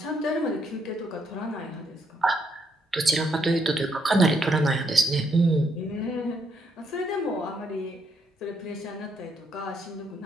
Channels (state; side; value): normal; both; correlation 0.74